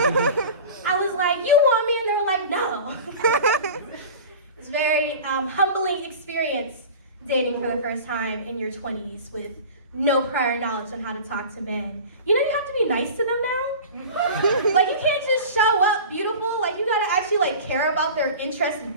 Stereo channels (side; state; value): both; inverted; correlation -0.36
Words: I was like, you want me? And they were like, no. It's a very humbling experience dating for the first time in your 20s with no prior knowledge on how to talk to men. You know, you have to be nice to them now. Like, you can't just show up beautiful. Like, you gotta actually like care about their interests and